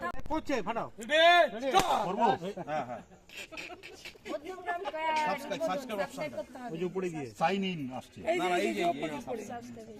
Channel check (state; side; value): identical; both; correlation 1.00